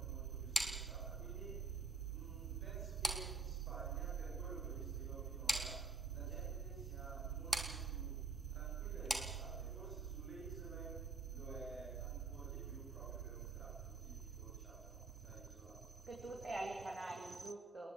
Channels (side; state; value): left; quieter; 3.8 dB